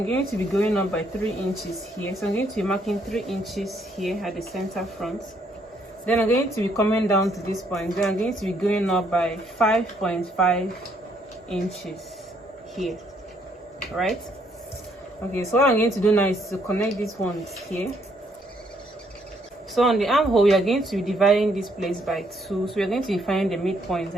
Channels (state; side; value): normal; both; correlation 0.70